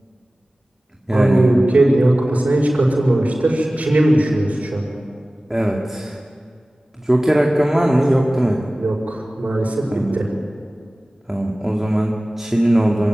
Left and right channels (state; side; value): normal; both; correlation 0.97